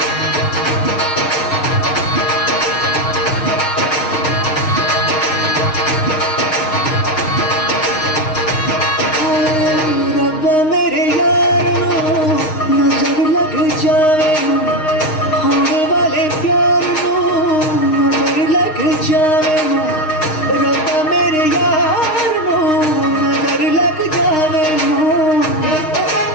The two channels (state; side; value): late; right; 6.5 ms